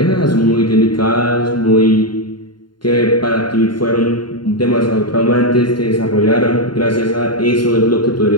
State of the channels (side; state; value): right; late; 0.72 ms